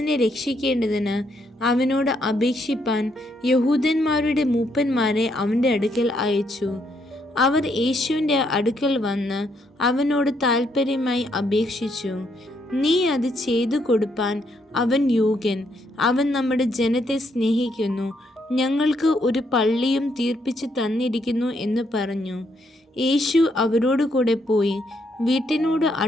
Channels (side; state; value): both; normal; correlation 0.74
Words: രക്ഷിക്കേണ്ടതിന് അവനോട് അപേക്ഷിപ്പാൻ യഹൂദന്മാരുടെ മൂപ്പന്മാരെ അവൻ്റെ അടുക്കൽ അയച്ചു. അവർ യേശുവിൻ്റെ അടുക്കൽ വന്ന് അവനോട് താൽപ്പര്യമായി അപേക്ഷിച്ചു, നീ അത് ചെയ്തു കൊടുപ്പാൻ അവൻ യോഗ്യൻ. അവൻ നമ്മുടെ ജനത്തെ സ്നേഹിക്കുന്നു, ഞങ്ങൾക്ക് ഒരു പള്ളിയും തീർപ്പിച്ച് തന്നിരിക്കുന്നു എന്ന് പറഞ്ഞു. യേശു അവരോട് കൂടെ പോയി വീട്ടിനോട്